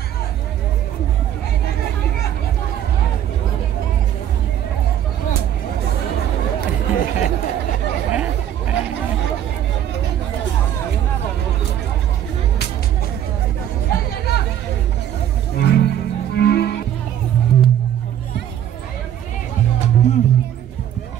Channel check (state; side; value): quieter; left; 10.6 dB